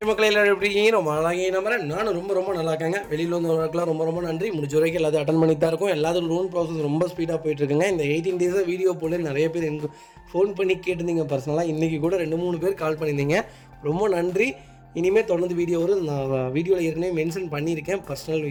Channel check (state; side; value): identical; both; correlation 1.00